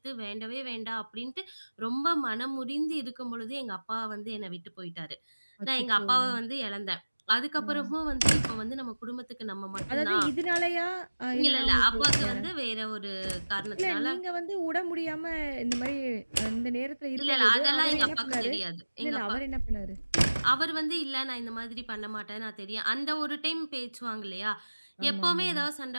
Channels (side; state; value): both; inverted; correlation -1.00